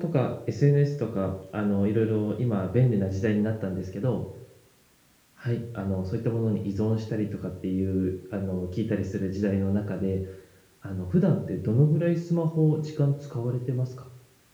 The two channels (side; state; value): both; identical; correlation 1.00